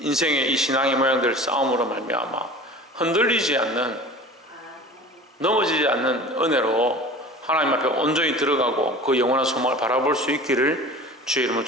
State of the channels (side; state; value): both; normal; correlation 0.39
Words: 이 신앙의 모양들 싸움으로 말미암아 흔들리지 않는, 넘어지지 않는 은혜로 하나님 앞에 온전히 들어가고 그 영원한 소망을 바라볼 수 있기를 주의 이름으로